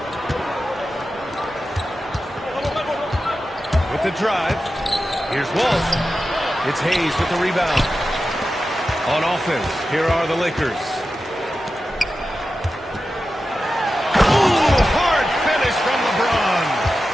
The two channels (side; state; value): both; normal; correlation 0.92